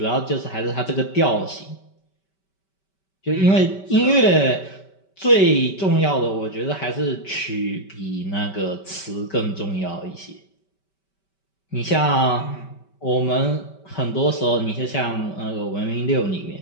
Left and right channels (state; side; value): late; right; 5.2 ms